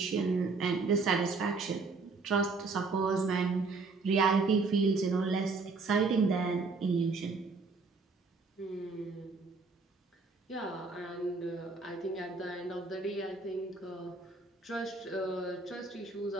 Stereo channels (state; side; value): quieter; left; 4.1 dB